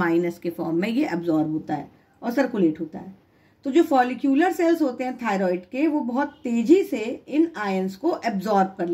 के फॉर्म में ये एब्जॉर्ब होता है और सर्कुलेट होता है। तो जो फॉलिक्यूलर सेल्स होते हैं थायराइड के, वो बहुत तेजी से इन आयंस को एब्जॉर्ब कर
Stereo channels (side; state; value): both; identical; correlation 1.00